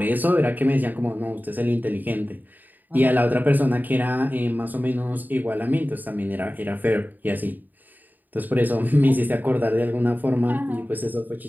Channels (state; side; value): late; left; 0.086 ms